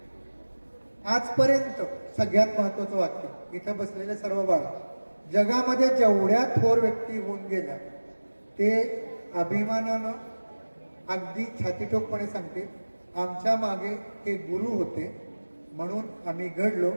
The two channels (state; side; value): inverted; both; correlation -1.00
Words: आजपर्यंत सगळ्यात महत्वाचं वाक्य, इथं बसलेले सर्व बाळ, जगामध्ये जेवढ्या थोर व्यक्ती होऊन गेल्या ते अभिमानानं अगदी छातीटोकपणे सांगते, आमच्या मागे हे गुरु होते म्हणून आम्ही घडलो,